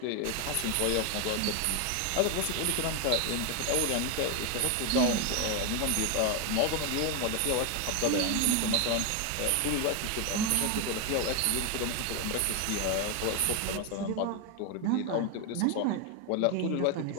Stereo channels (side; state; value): both; different; correlation 0.01